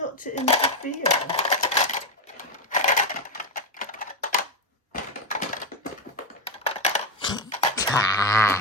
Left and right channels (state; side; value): normal; both; correlation 0.09